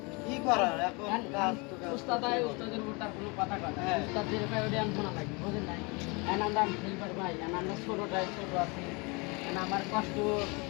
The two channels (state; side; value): quieter; right; 28.9 dB